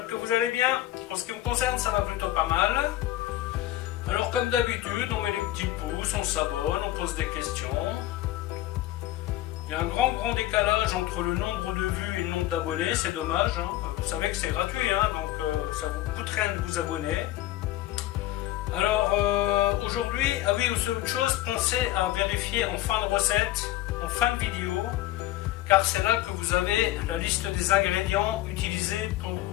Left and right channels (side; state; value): right; quieter; 14.8 dB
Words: que vous allez bien. En ce qui me concerne, ça va plutôt pas mal. Alors comme d'habitude, on met les petits pouces, on s'abonne, on pose des questions. Il y a un grand décalage entre le nombre de vues et le nombre d'abonnés, c'est dommage. Hein. Vous savez que c'est gratuit, hein, donc ça vous coûte rien de vous abonner. Alors aujourd'hui, ah oui, aussi autre chose, pensez à vérifier en fin de recette, en fin de vidéo, car c'est là que vous avez la liste des ingrédients utilisés pour